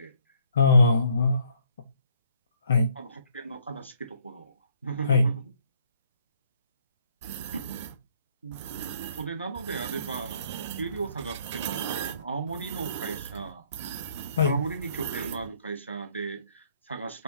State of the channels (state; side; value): inverted; both; correlation -0.64